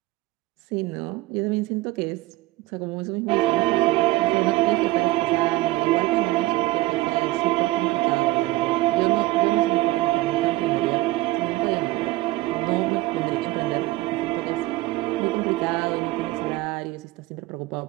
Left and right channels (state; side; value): quieter; left; 18.9 dB